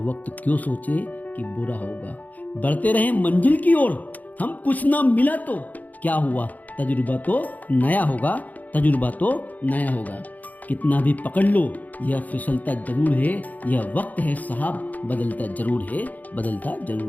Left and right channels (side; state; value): right; late; 0.079 ms